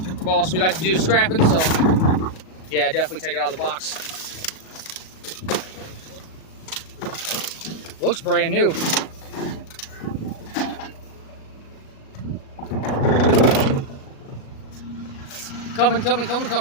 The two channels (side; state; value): right; late; 37 ms